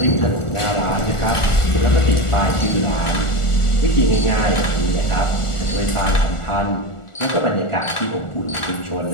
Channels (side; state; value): right; late; 1.4 ms